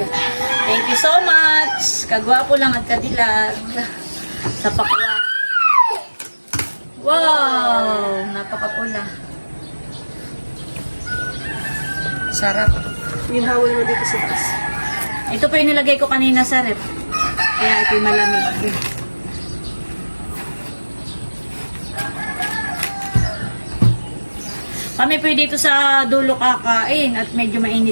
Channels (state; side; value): inverted; both; correlation -1.00